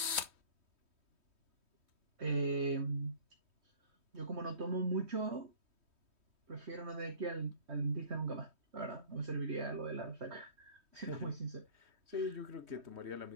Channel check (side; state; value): left; late; 3.2 ms